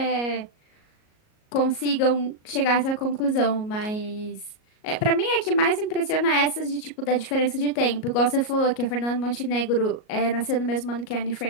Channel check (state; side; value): late; right; 38 ms